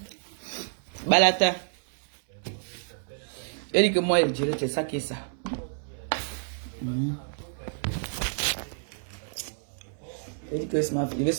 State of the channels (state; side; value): silent; left; 58 dB below the other